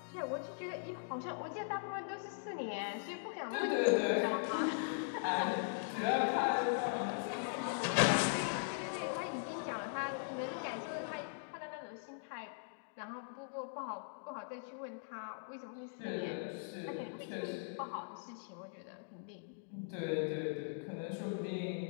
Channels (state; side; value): silent; right; digital silence